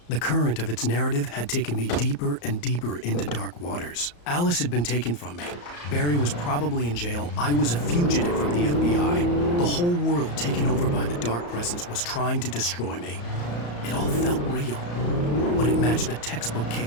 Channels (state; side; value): late; right; 34 ms